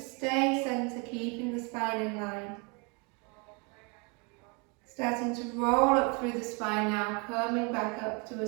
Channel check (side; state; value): left; quieter; 32.3 dB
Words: stay centre, keeping the spine in line. Starting to roll up through the spine now, coming back up to a